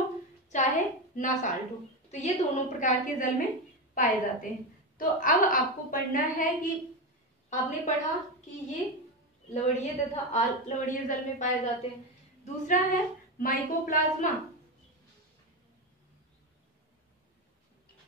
चाहे ना साल्ट हो, तो ये दोनों प्रकार के जल में पाए जाते हैं। तो अब आपको पढ़ना है कि आपने पढ़ा कि ये लवणीय तथा अलवणीय जल में पाए जाते हैं। दूसरा है माइकोप्लाज्मा,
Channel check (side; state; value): both; normal; correlation 0.15